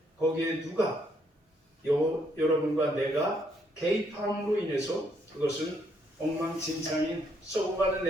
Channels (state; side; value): normal; both; correlation 0.71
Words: 거기에 누가 여러분과 내가 개입함으로 인해서 그것은 엉망진창인 썩어가는